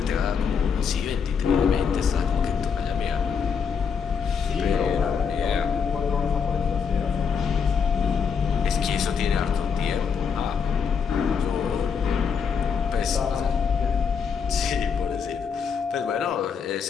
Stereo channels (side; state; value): right; quieter; 6.4 dB